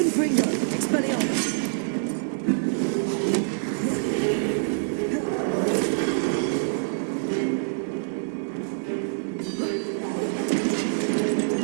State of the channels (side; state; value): left; silent; digital silence